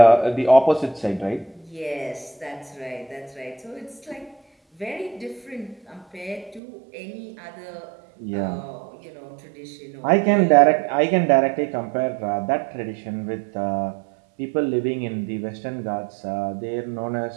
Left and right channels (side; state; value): left; drops out; at 6.6 s